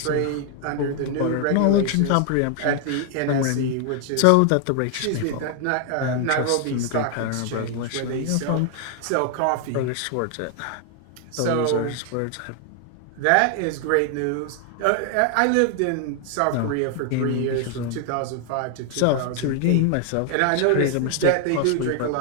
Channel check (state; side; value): different; both; correlation 0.00